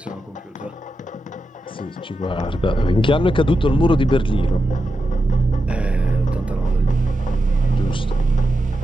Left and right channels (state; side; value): normal; both; correlation 0.88